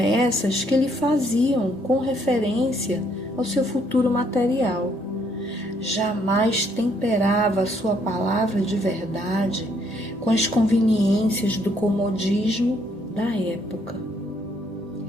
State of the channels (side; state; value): both; normal; correlation 0.69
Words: que lhe faziam com referência ao seu futuro material. Jamais temperava a sua palavra de verdade com as conveniências do comodismo da época.